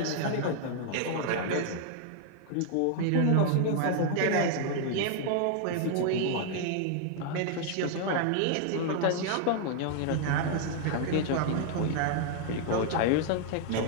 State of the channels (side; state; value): both; different; correlation 0.00